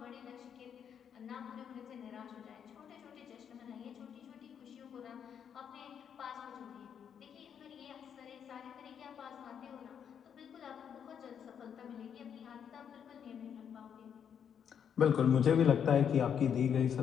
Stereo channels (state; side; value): quieter; right; 8.1 dB